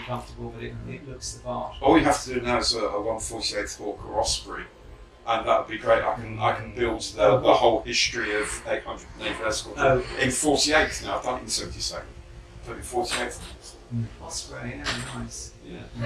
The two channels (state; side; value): identical; both; correlation 1.00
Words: comfortable that it looks the part. All you have to do now is a 148th Hawk or Osprey, and that would be great. I can build the whole history of 800 Naval Escort in 48th now. I've done it in 72nd. But in 48th. Osprey, nice.